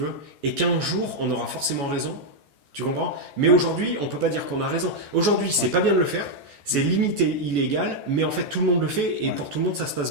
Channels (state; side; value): late; left; 13 ms